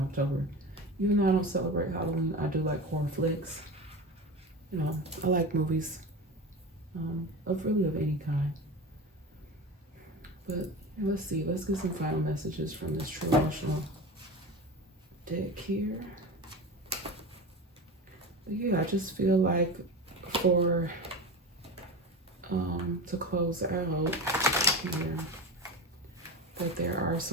Even though I don't celebrate Halloween, I do like horror flicks. I like movies of any kind. But let's see. Let's get some final messages from this True Emotional deck here. Yeah, I just feel like for to close out here, that there are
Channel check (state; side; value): normal; both; correlation 0.27